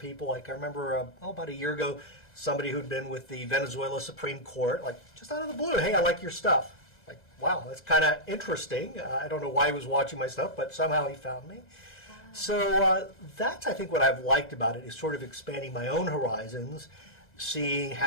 Like I remember about a year ago, somebody who'd been with the Venezuela Supreme Court, like just out of the blue, hey, I like your stuff. Like, wow, that's kind of interesting. I don't know why he was watching my stuff, but somehow he found me. Wow. So that's, I think, what I've liked about it, is sort of expanding my own horizons, seeing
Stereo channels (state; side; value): late; right; 2.0 ms